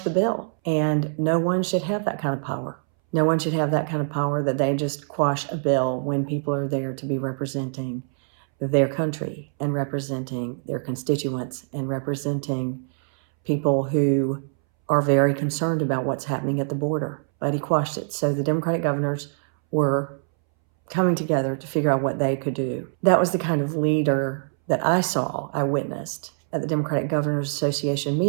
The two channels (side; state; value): left; silent; 62 dB below the other